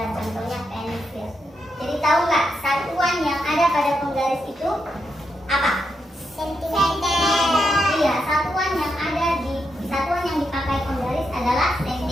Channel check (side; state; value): both; normal; correlation 0.83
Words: contohnya pensil. Jadi tahu nggak satuan yang ada pada penggaris itu apa? Sentimeter. Iya, satuan yang dipakai penggaris adalah